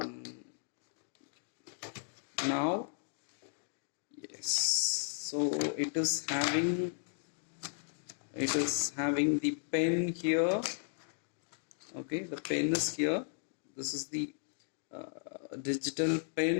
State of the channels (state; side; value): silent; right; digital silence